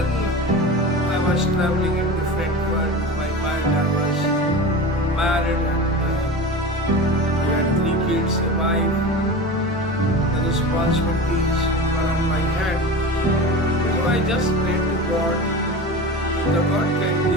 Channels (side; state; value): both; normal; correlation 0.30